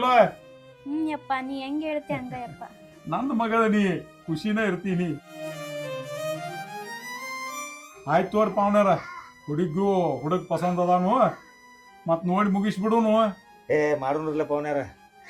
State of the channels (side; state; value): both; identical; correlation 1.00